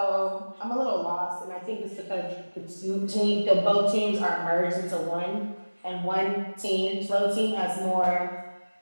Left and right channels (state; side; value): inverted; both; correlation -1.00